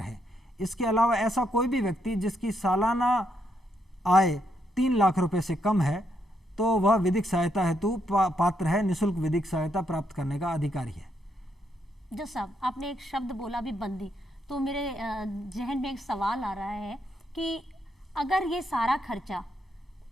है। इसके अलावा ऐसा कोई भी व्यक्ति जिसकी सालाना आय 3 लाख रुपए से कम है तो वह विधिक सहायता हेतु पात्र है, निःशुल्क विधिक सहायता प्राप्त करने का अधिकारी है। जज साहब, आपने एक शब्द बोला भी बंदी, तो मेरे जहन में एक सवाल आ रहा है कि अगर ये सारा खर्चा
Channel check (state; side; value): normal; both; correlation 0.77